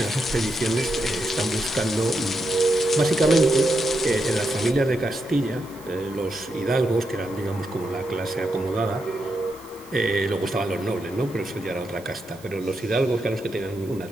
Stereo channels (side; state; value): right; noise; hiss, 23 dB below the sound